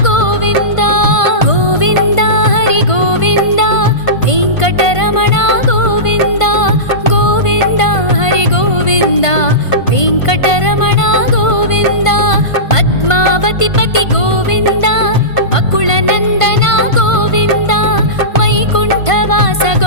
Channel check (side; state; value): right; late; 1.5 ms